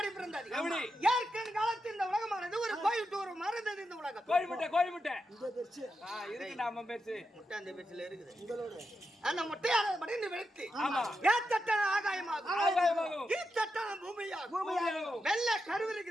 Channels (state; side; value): normal; both; correlation 0.87